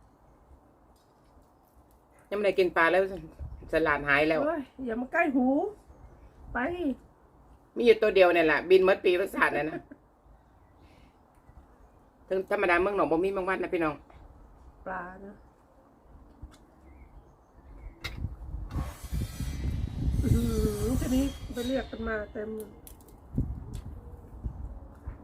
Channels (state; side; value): identical; both; correlation 1.00